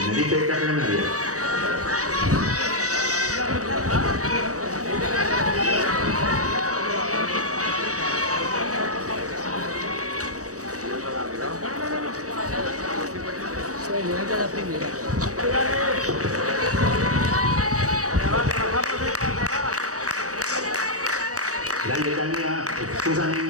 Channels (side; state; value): left; late; 0.66 ms